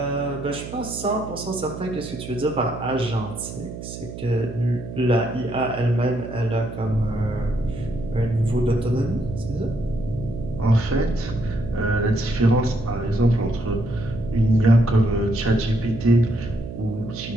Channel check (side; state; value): right; noise; hum, 10 dB below the sound